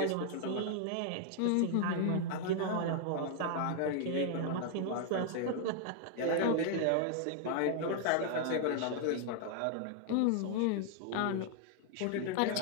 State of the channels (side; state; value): both; different; correlation 0.00